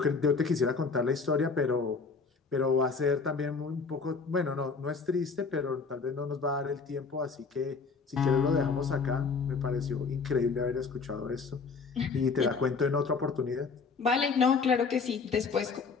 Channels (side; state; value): right; quieter; 4.8 dB